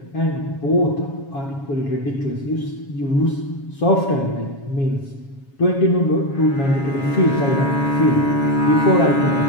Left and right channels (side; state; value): right; late; 7.3 ms